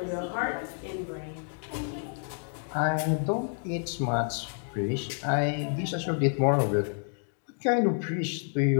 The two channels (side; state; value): right; silent; 58 dB below the other